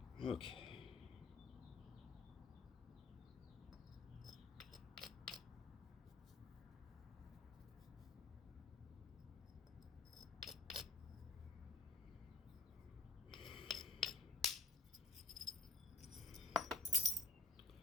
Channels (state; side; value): quieter; right; 3.6 dB